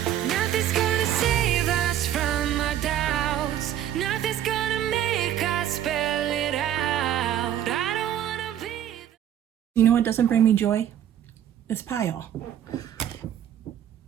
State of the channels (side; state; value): left; quieter; 10.6 dB